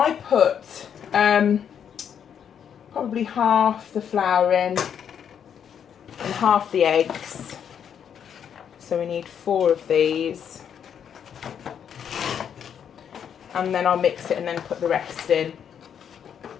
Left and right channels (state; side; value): quieter; right; 8.3 dB